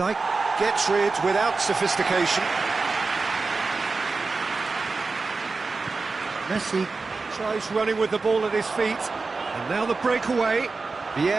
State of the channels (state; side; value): quieter; left; 4.0 dB